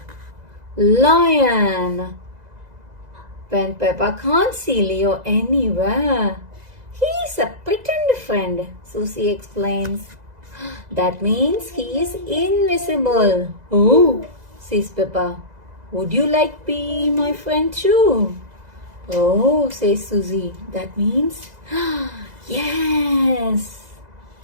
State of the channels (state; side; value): late; left; 2.0 ms